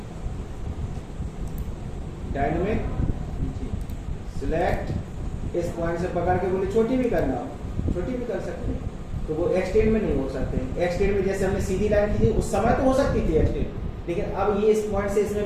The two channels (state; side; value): identical; both; correlation 1.00